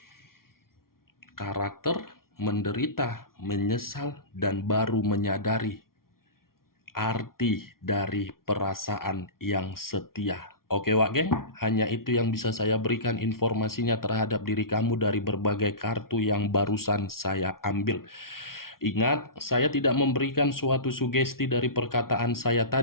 Karakter, menderita, menyesal, dan baru menyadari arti dari perasaan yang setia. Oke Wak Geng, hanya itu yang bisa saya berikan informasinya terhadap diri kamu dari berbagai kartu yang barusan saya ambil. Ingat, saya tidak memberikan suatu sugesti dari perkataan saya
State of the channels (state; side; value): late; right; 0.93 ms